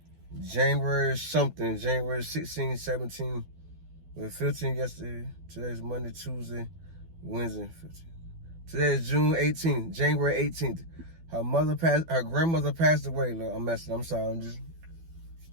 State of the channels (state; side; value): late; left; 12 ms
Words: January 16, 17, well, 15 yesterday. Today's Monday, Tuesday, Wednesday, 15. Today is June 18th, January 18th. Her grandmother passed away. Look, I'm sorry.